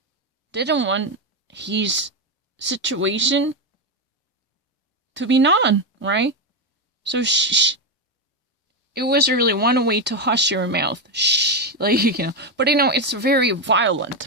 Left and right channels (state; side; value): normal; both; correlation 0.08